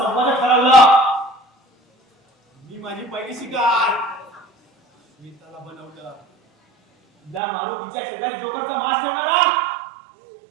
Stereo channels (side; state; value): left; drops out; at 7.4 s